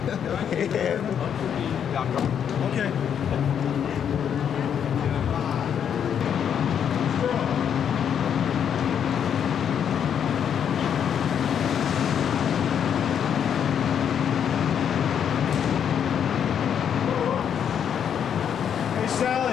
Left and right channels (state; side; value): quieter; right; 8.4 dB